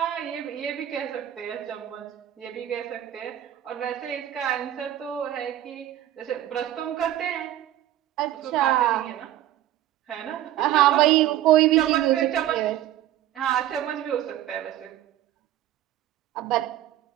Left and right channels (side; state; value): left; quieter; 12.8 dB